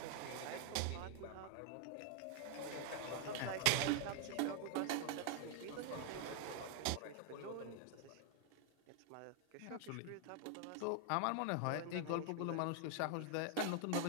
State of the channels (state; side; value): different; both; correlation 0.00